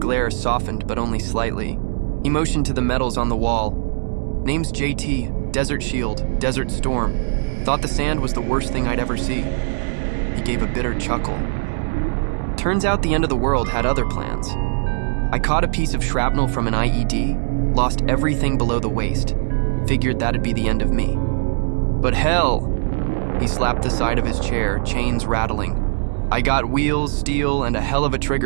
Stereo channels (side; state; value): left; silent; 65 dB below the other